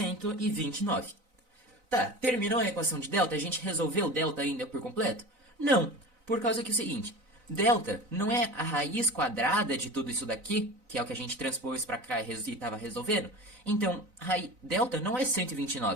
Tá, terminou a equação de delta? A gente resolveu delta ainda por completo? Não, por causa que é o seguinte, delta não é a raiz quadrada de tudo isso daqui, que é o que a gente transpôs para cá e estava resolvendo. Então, delta não é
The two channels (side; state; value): left; late; 4.0 ms